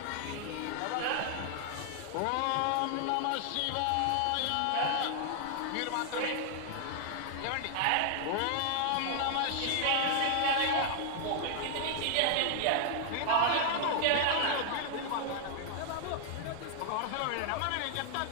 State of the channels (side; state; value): both; different; correlation 0.00